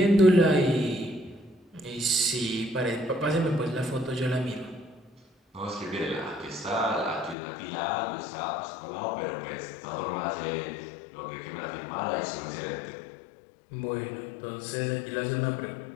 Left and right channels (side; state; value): right; drops out; at 7.4 s